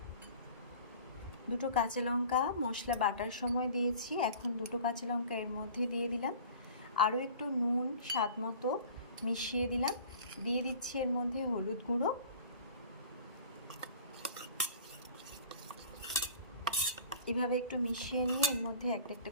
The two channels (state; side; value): inverted; both; correlation -0.45